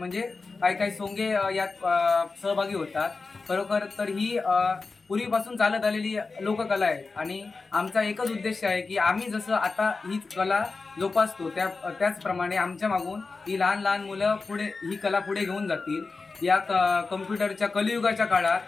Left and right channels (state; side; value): quieter; right; 4.1 dB